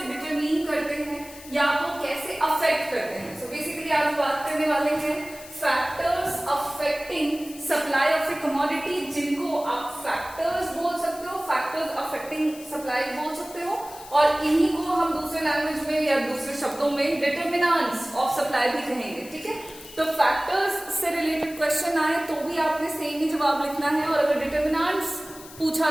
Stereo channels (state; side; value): noise; left; hiss, 17 dB below the sound